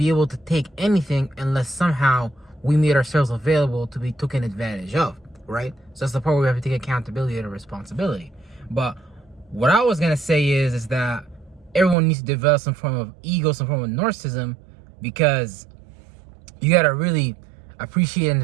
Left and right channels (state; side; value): drops out; left; at 12.0 s